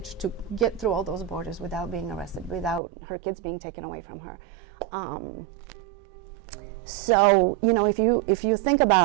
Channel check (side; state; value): left; drops out; at 2.8 s